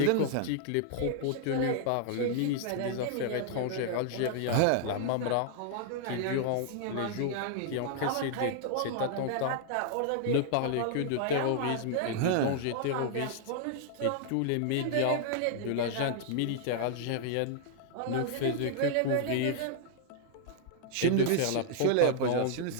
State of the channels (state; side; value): different; both; correlation -0.01